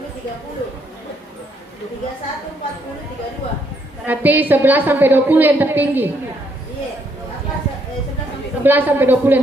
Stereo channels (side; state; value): both; normal; correlation 0.71